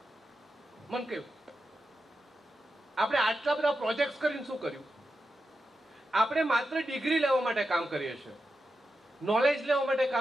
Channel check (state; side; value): normal; both; correlation 0.89